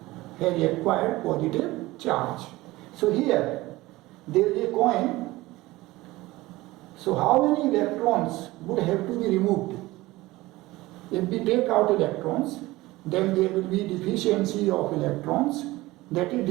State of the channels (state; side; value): quieter; left; 19.1 dB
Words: has acquired positive charge. So here there is a coin. So how many electrons would have to be removed? If we take out electrons, then there will be deficiency of electrons, that is